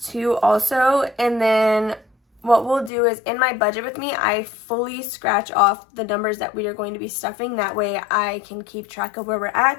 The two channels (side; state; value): right; drops out; at 2.9 s